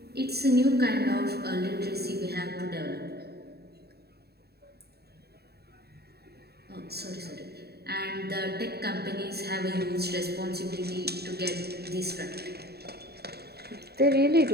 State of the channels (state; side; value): late; left; 0.47 ms